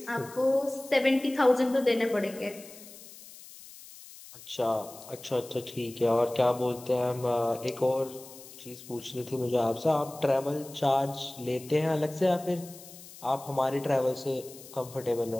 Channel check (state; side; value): noise; left; hiss, 18 dB below the sound